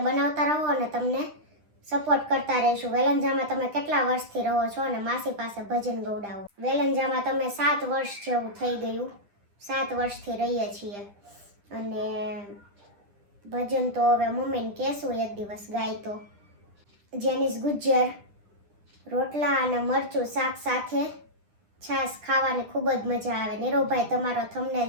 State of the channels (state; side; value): late; left; 9.9 ms